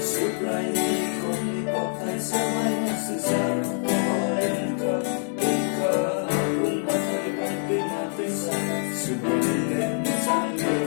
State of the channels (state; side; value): silent; right; 61 dB below the other